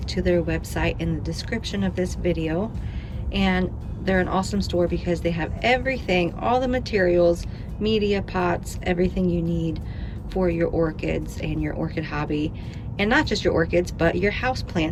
to their website in the description of this video, and they're an awesome store because they have everything, all the materials, media, pots, everything you need for your orchids and your orchid hobby, and not just your orchids but your house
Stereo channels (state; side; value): identical; both; correlation 1.00